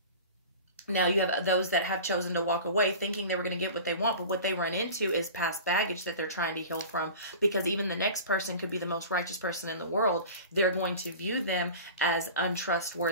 Now you have those that have chosen to walk away thinking they were going to get what they want, but what they run into is past baggage that they're trying to heal from, because even the next person could be the most righteous person in the world. They're going to view them as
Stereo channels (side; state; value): both; inverted; correlation -0.36